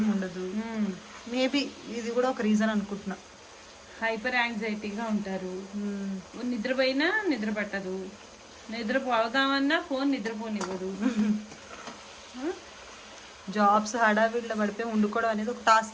ఉండదు. మేబీ ఇది కూడా ఒక రీజన్ అనుకుంటున్నా. హైపర్ యాంగ్జైటీగా ఉంటారు. నిద్రపోయినా నిద్ర పట్టదు, నిద్రపోదామన్నా ఫోన్ నిద్రపోనివ్వదు. జాబ్స్ హడావిడిలో పడిపోయి వండుకోవడం అనేది ఒక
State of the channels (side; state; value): both; identical; correlation 1.00